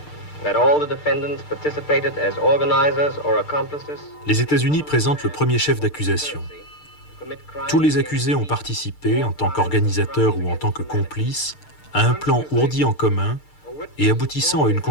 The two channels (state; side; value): late; right; 6.6 ms